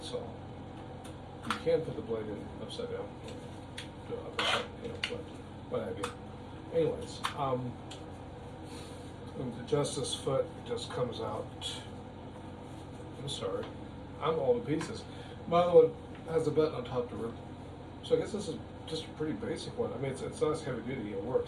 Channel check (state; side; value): identical; both; correlation 1.00